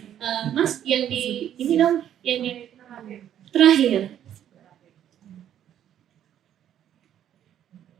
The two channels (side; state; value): left; quieter; 10.5 dB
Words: Mas yang di ini dong, yang terakhir.